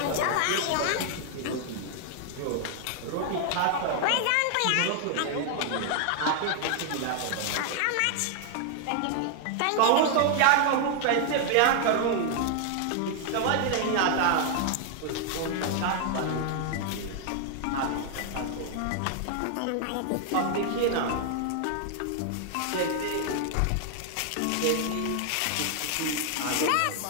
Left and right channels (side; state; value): both; different; correlation 0.00